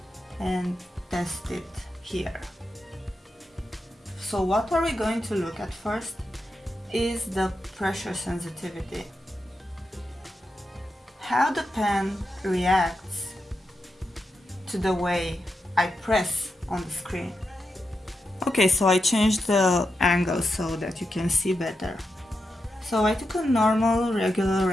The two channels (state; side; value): normal; both; correlation 0.87